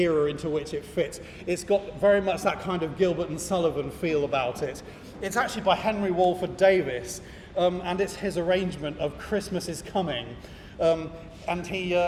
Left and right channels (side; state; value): both; identical; correlation 1.00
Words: into which it fits. It's got very much that kind of Gilbert and Sullivan feel about it. It's actually by Henry Walford Davis, and it's his arrangement of Christmas is Coming. And